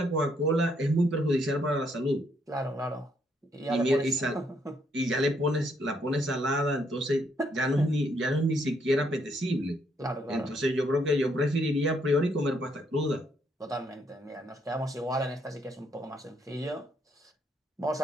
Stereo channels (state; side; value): normal; both; correlation 0.72